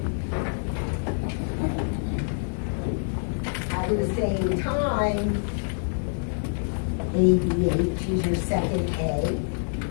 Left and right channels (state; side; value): silent; right; digital silence